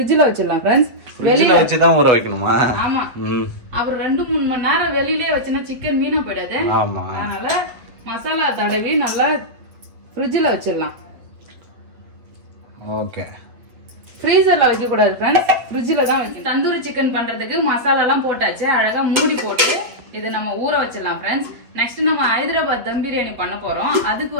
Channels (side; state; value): left; late; 8.3 ms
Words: வச்சிடலாம் ஃப்ரெண்ட்ஸ். வெளியில வச்சு தான் ஊற வைக்கணுமா? ஆமா, அப்புறம் 2-3 மணி நேரம் வெளியிலே வச்சுனா சிக்கன் வீணா போயிடாது. ஆமா, அதனால மசாலா தடவி நல்லா ஃப்ரிட்ஜ்ல வச்சிடலாம். ஓகே. ஃப்ரீசர்ல வைக்க கூடாது ஃப்ரெண்ட்ஸ், ஃப்ரிட்ஜ்ல தான் வைக்கணும். தந்தூரி சிக்கன் பண்றதுக்கு மசாலா எல்லாம் போட்டாச்சு. அழகா மூடி போட்டு இதை நம்ம ஊற வச்சிடலாம் ஃப்ரெண்ட்ஸ். நெக்ஸ்ட் நம்ம ஹைதராபாத் தம் பிரியாணி பண்ண போறோம். அதுக்கு